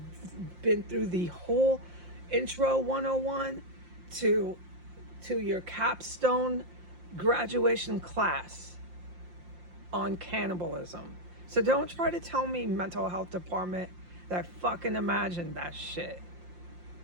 been through the whole intro 101 to your capstone graduation class on cannibalism. So don't try to tell me mental health department that fucking imagined that shit.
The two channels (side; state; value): left; late; 5.7 ms